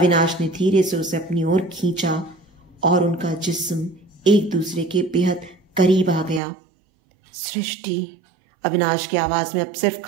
ने धीरे से उसे अपनी ओर खींचा और उनका जिस्म एक दूसरे के बेहद करीब आ गया। सृष्टि, अविनाश की आवाज में अब सिर्फ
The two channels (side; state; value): left; drops out; at 6.4 s